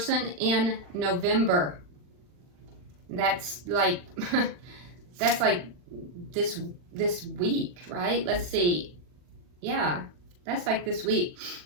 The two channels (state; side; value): late; left; 40 ms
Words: in November. That's like this week, right? Let's see. Yeah, that's like this week.